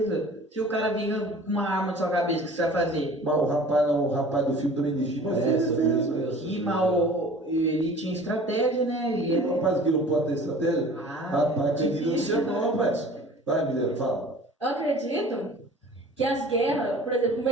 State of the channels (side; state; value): both; normal; correlation 0.45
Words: Se o cara vinha com uma arma na sua cabeça, o que você vai fazer? Mas o rapaz do filme também legítimo É, sobre isso mesmo. E mal, ele tinha estratégia, né? Ele O rapaz que não pode ter estratégia? Ah, Rapaz, querido, não difícil, sei né? não, rapaz. Vai, Mineiro, fala. Eu acredito que as guerras, por exemplo, no